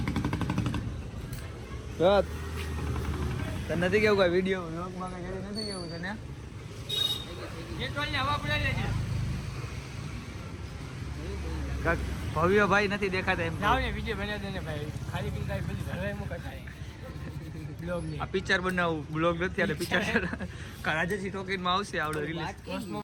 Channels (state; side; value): identical; both; correlation 1.00